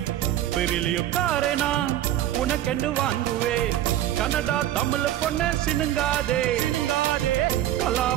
பெரிலியோ காரேனா உனக்கென்று வாங்குவேன் கன்னடா தமிழ் பொண்ணு சினுங்காதே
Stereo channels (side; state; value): left; quieter; 12.8 dB